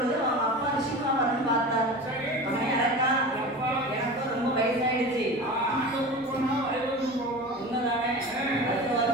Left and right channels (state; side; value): normal; both; correlation 0.32